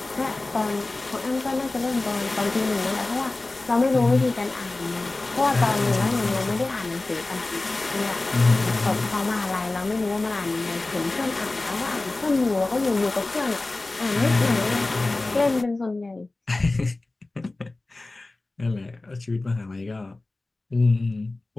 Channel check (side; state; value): right; quieter; 3.0 dB